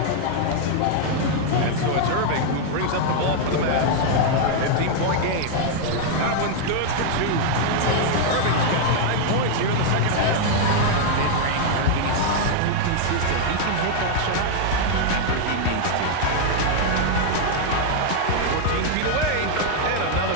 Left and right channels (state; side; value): different; both; correlation 0.00